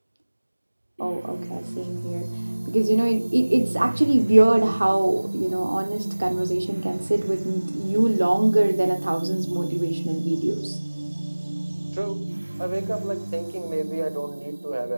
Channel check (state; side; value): inverted; both; correlation -1.00